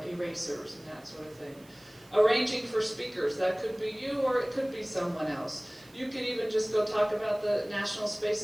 erasers and that sort of thing. Arranging for speakers, that could be you or it could be someone else. You could even just go talk about the National Space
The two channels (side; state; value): right; noise; hiss, 27 dB below the sound